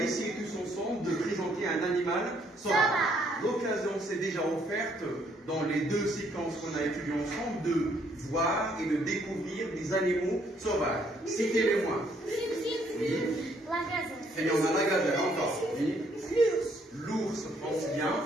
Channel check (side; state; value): both; normal; correlation 0.68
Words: essayer tous ensemble de présenter un animal sauvage. L'occasion s'est déjà offerte dans les deux séquences qu'on a étudiées ensemble de voir et de découvrir des animaux sauvages. Citez-les-moi. Oui. Et on a la gazelle encore. Oui. L'ours, pense bien.